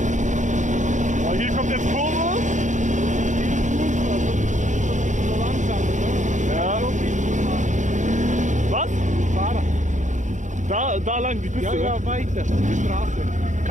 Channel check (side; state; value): left; late; 0.36 ms